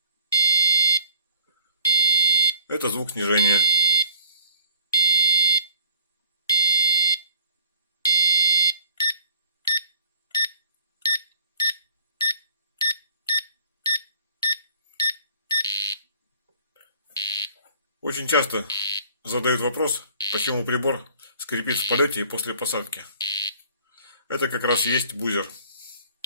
Это звук снижения. Очень часто задают вопрос, почему прибор скрипит в полете и после посадки. Это как раз и есть бузер.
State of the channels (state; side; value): inverted; both; correlation -0.54